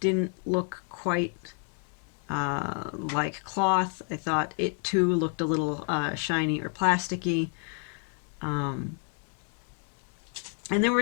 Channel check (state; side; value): quieter; right; 38.5 dB